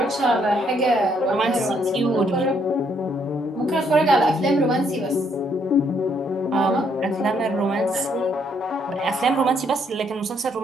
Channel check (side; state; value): both; normal; correlation 0.70